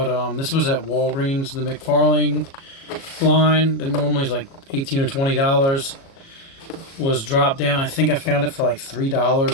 this was at Walgreens, the McFarlane line that normally is like $18 or $20 was dropped down. I think I found it for like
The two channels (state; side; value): late; right; 37 ms